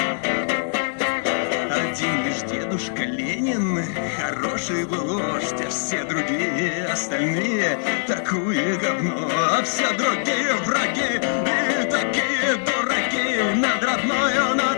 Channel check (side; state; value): right; silent; 64 dB below the other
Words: Один лишь дедушка Ленин хороший был вождь, а все другие остальные такое говно, а все другие враги и такие дураки. Над родною,